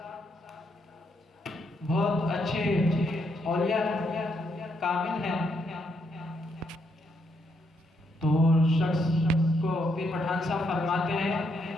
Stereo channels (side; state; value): both; normal; correlation 0.77